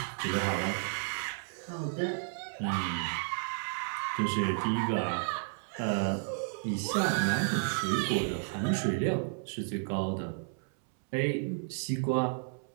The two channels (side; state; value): left; silent; 56 dB below the other